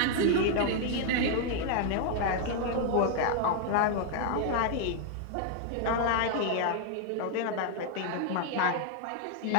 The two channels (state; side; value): different; both; correlation 0.00